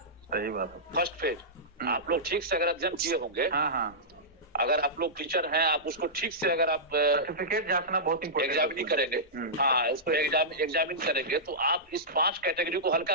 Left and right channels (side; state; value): both; normal; correlation -0.15